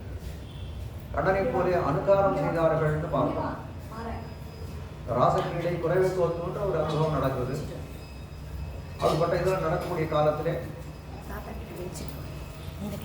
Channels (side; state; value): both; identical; correlation 1.00